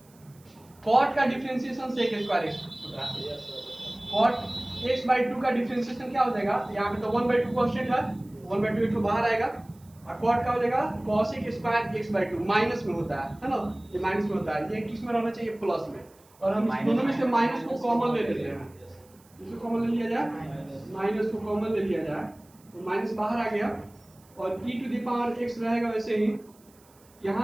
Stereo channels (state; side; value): noise; right; hiss, 29 dB below the sound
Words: cot का डिफरेंशिएशन sec स्क्वायर x होता है, cot x बाई 2 का डिफरेंशिएशन क्या हो जाएगा, यहाँ पे तो 1 बाई 2 कांस्टेंट है, 1 बाई 2 एक ठो बाहर आएगा, और cot का हो जाएगा cos square x by 2, minus में होता है ना, ये माइनस में होता है, ये किस में रहना चाहिए प्लस में, और हम इस दोनों में से माइनस को कॉमन ले लेते हैं, इसको कॉमन ले लिया जाए, माइनस को कॉमन ले लिया जाए तो माइनस बाहर आ गया, और e to the power x रहेगा वैसे ही,